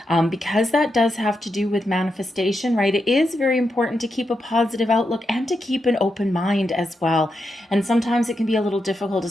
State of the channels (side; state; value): both; normal; correlation 0.85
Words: because that does have to do with manifestation, right, it is very important to keep a positive outlook and to keep an open mind as well. And sometimes it can be a little difficult,